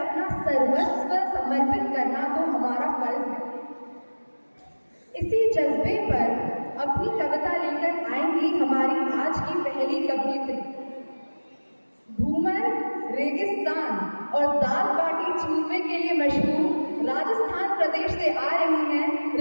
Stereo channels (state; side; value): inverted; both; correlation -1.00